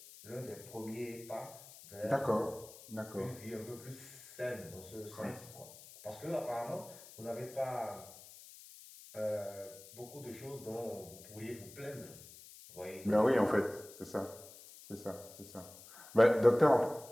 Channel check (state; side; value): noise; left; hiss, 18 dB below the sound